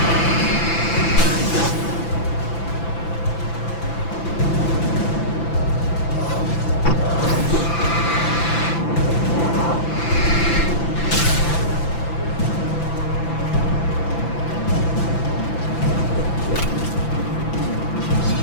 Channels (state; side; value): late; right; 5.9 ms